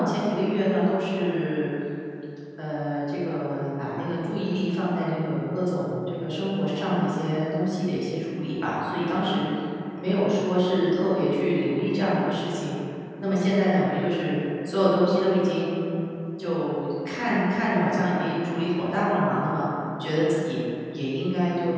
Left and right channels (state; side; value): identical; both; correlation 1.00